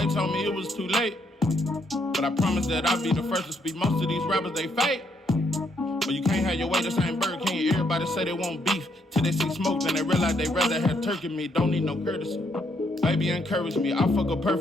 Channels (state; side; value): normal; both; correlation 0.74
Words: told me it was too late, but I promise that I'll be the first to speak. Most of these rappers, they fake. But you can't have your way, this ain't Burger King. Everybody say they want beef till they see smoke, then they realize they rather have turkey meat. Don't need no courtesy. Baby encourage me, I fuck her